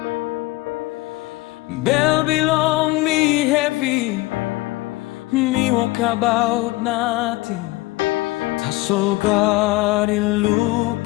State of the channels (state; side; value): quieter; right; 20.6 dB